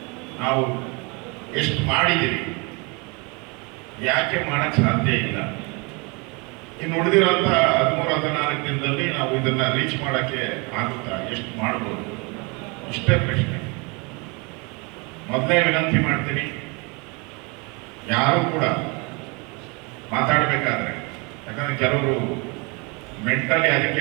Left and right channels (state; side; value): quieter; left; 29.7 dB